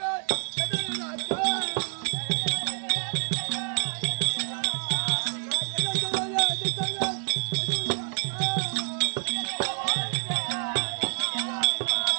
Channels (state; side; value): silent; left; digital silence